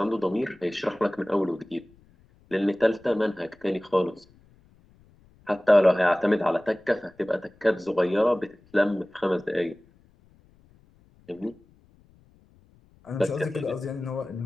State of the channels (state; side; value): noise; left; rumble, 30 dB below the sound